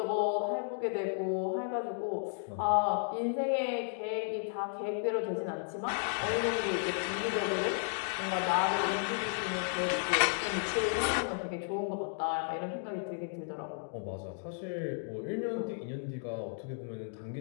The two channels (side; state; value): right; silent; digital silence